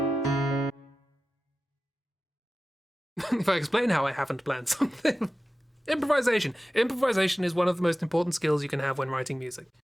If I explain how I haven't planned something. Improvisation. Improvisation is one of the most important skills you can have when writing music.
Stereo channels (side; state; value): both; normal; correlation 0.94